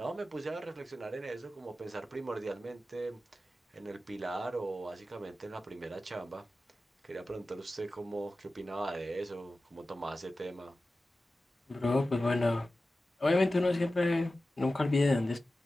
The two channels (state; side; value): normal; both; correlation 0.94